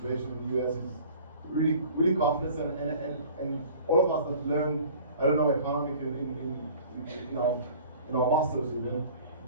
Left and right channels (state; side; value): inverted; both; correlation -0.47